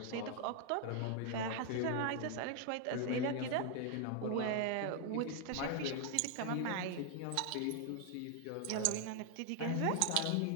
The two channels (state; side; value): different; both; correlation 0.00